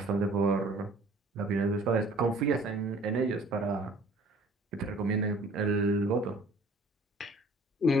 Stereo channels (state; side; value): normal; both; correlation 0.53